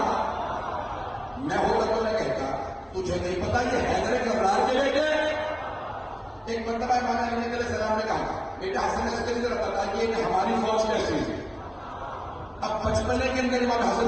میں ہوتا تو میں کہتا تجھے نہیں پتا یہ حیدر کرار کے بیٹے. ایک مرتبہ امام علی نقی علیہ السلام نے کہا بیٹا حسن عسکری ذرا بتائیے کہ ہماری فوج کیسی ہے. اب بچپنے کے اندر امام حسن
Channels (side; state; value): both; identical; correlation 1.00